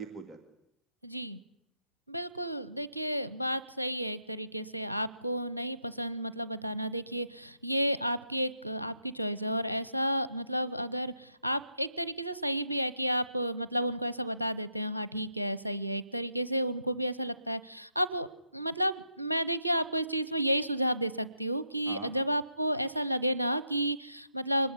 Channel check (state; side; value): inverted; both; correlation -0.83